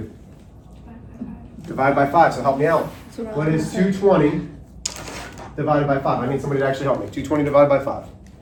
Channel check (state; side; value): identical; both; correlation 1.00